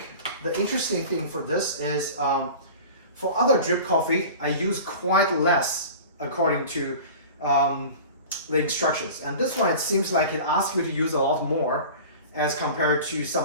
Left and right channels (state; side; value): inverted; both; correlation -0.38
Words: the interesting thing for this is for other drip coffee, I use quite less according to the instructions. And this one, it seems like it asks you to use a lot more as compared to